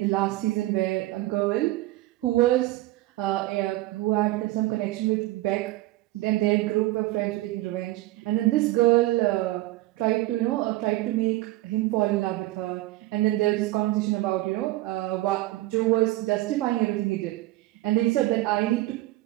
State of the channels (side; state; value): left; quieter; 17.9 dB